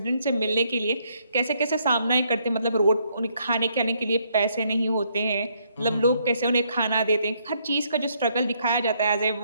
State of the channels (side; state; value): both; inverted; correlation -0.71